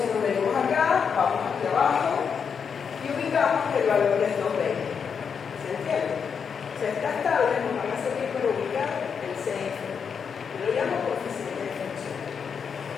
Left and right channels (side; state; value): right; quieter; 6.6 dB